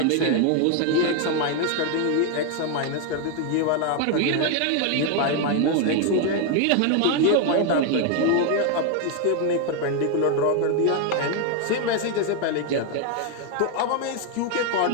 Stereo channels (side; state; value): both; different; correlation 0.01